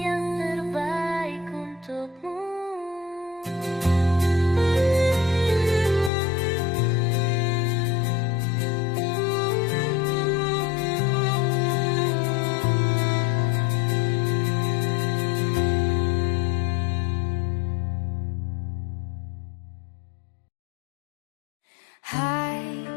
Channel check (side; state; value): right; drops out; at 6.1 s